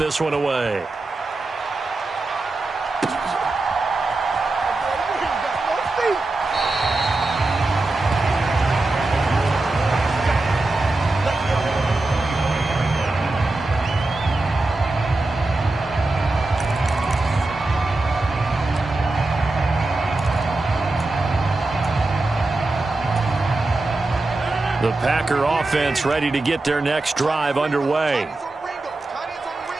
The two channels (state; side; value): quieter; left; 3.1 dB